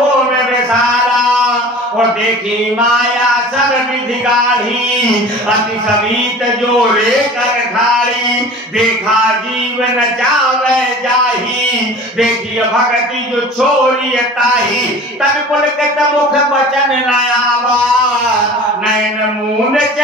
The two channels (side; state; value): both; normal; correlation 0.40